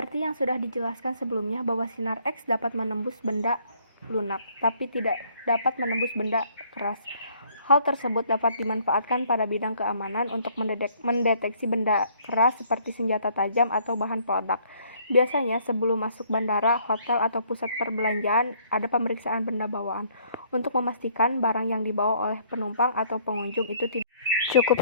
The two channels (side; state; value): both; inverted; correlation -0.63